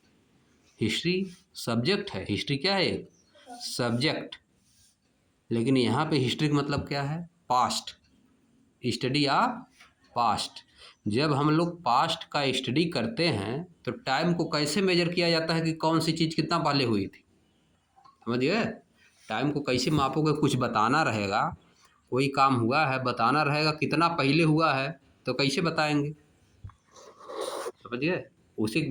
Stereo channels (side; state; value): both; identical; correlation 1.00